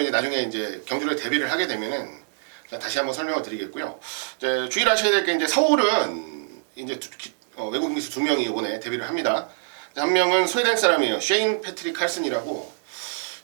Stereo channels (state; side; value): silent; left; 59 dB below the other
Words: 이제 나중에 이제 경주를 데뷔를 하게 되면은 다시 한번 설명을 드리겠고요. 이제 주의하셔야 될 게 이제 서울은 이제 외국인 기수 2명이 이번에 데뷔를 합니다. 한 명은 스웨덴 사람이에요. 쉐인 패트릭 칼슨이라고